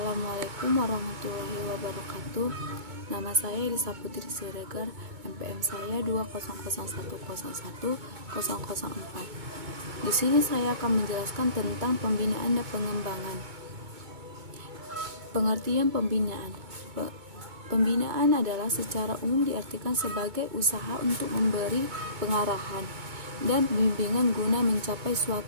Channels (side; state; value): left; late; 2.2 ms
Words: Assalamualaikum warahmatullahi wabarakatuh. Nama saya Elisa Putri Siregar, NPM saya 200101004. Di sini saya akan menjelaskan tentang pembinaan dan pengembangan. Pengertian pembinaan. Pembinaan adalah secara umum diartikan sebagai usaha untuk memberi pengarahan dan bimbingan guna mencapai